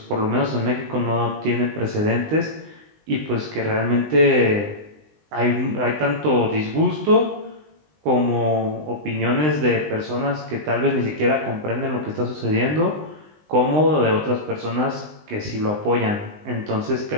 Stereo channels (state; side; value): late; left; 20 ms